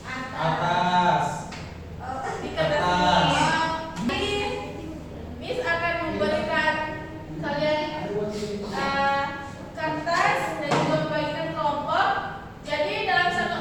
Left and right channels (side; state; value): both; identical; correlation 1.00